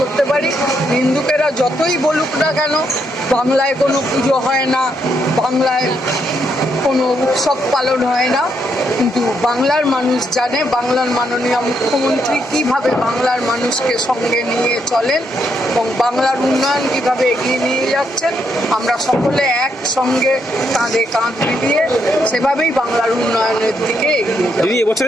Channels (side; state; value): both; normal; correlation 0.77